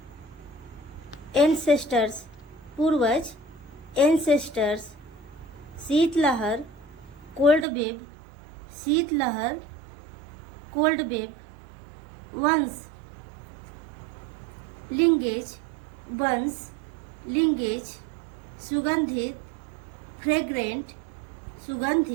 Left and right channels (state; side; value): drops out; left; at 7.7 s